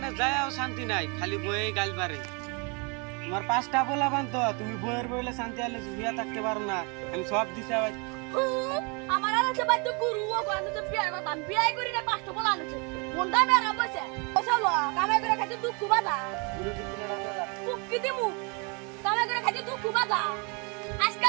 যায়ও শান্তি নাই খালি বয়ে গাল পারে তোমার 5টা বলা বান তো তুমি বইয়ের বইলে শান্তি আলে বিয়া থাকতে পারো না আমি সব দিশা আমার আর আছে বাদ গুরু ও গান তো বিয়ে কথা বিয়ে করি না পাঁচটা বলা আছে কোনটা মেরা বসে বসালো কামে করে খাইতে দুঃখ বাদা গুরু দিন না দাদা মুক্তি দিমু কামে করে খাইতে দুঃখ বাদা আজকে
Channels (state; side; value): quieter; left; 32.6 dB